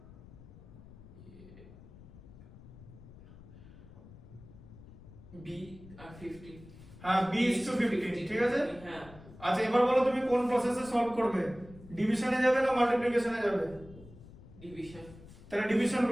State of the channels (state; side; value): noise; left; rumble, 19 dB below the sound